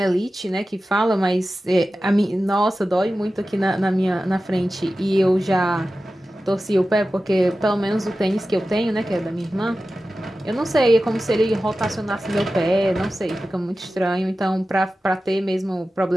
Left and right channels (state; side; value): normal; both; correlation 0.94